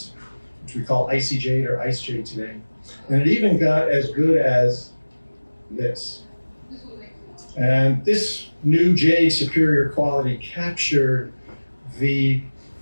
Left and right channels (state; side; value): inverted; both; correlation -1.00